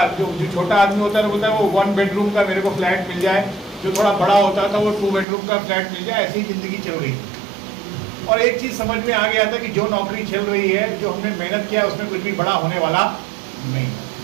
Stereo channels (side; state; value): left; drops out; at 5.2 s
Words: जो छोटा आदमी होता है बोलता है वो 1 बेडरूम का मेरे को फ्लैट मिल जाए, जो थोड़ा बड़ा होता था वो 2 बेडरूम का फ्लैट मिल जाए। ऐसी ज़िंदगी चल रही थी। और एक चीज़ समझ में आ गया था कि जो नौकरी चल रही है, जो हमने मेहनत किया उसमें कुछ भी बड़ा होने वाला नहीं।